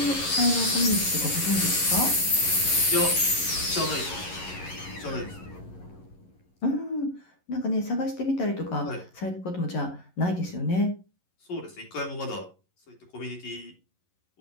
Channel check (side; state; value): right; late; 11 ms